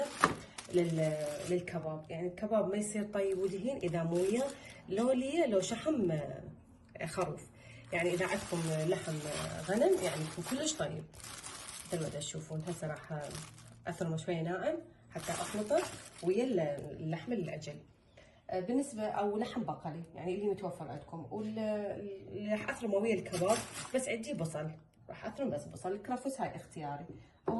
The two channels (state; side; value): identical; both; correlation 1.00